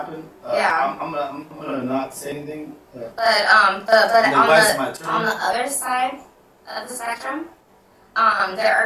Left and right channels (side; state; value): both; identical; correlation 1.00